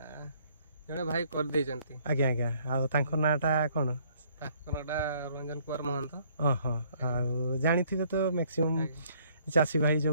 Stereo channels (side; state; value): both; inverted; correlation -0.62